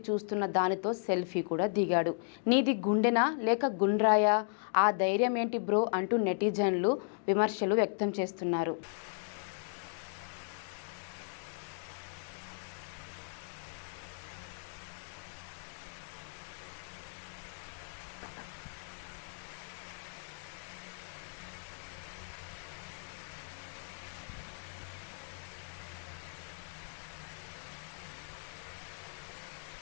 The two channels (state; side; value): silent; right; digital silence